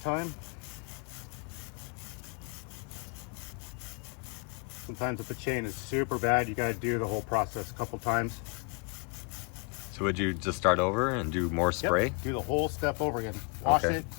Sometimes if the chain is super bad, you gotta do the whole process a couple times. So would you just start over and do more spray? Yep, do the whole step over again. Wash Okay. it,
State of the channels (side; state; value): right; quieter; 35.8 dB